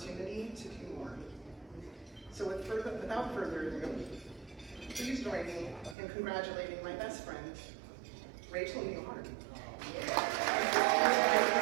to do more. So without further ado, please join me in congratulating my best friend, Rachel Newhart.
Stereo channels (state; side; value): drops out; left; at 6.0 s